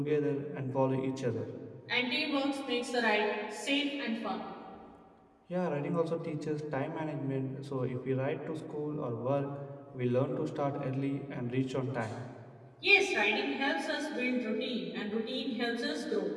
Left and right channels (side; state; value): both; identical; correlation 1.00